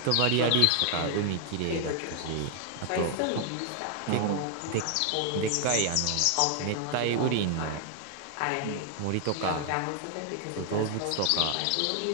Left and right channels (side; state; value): both; different; correlation 0.00